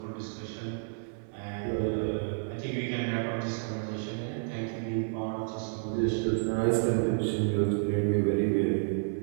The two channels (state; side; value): silent; left; 57 dB below the other